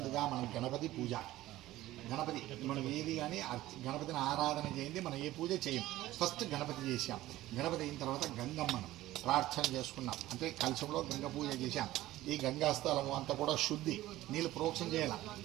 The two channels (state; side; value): quieter; left; 15.9 dB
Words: మనం గణపతి పూజ, గణపతి మనం ఏది కానీ గణపతిని ఆరాధన చేయండి, మనం ఏ పూజ చేయం. ఫస్ట్ గణపతి చేసాం, గణపతి అయిన తర్వాత గంగమ్మను ప్రార్థన చేసుకున్నాం, అంటే కలశంలో గంగ పూజ చేశాం. ఈ గంగా స్థలము అంతా కూడా శుద్ధి, నీళ్ళు ప్రోక్షణ చేయాలి,